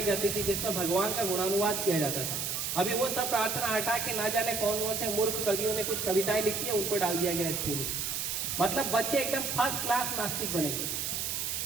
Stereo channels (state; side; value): noise; right; hiss, 1 dB below the sound